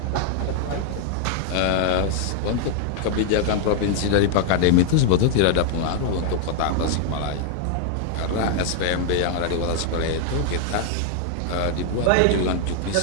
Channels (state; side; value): different; both; correlation 0.00